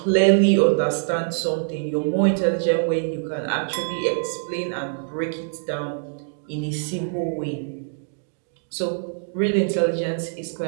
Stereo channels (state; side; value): silent; left; digital silence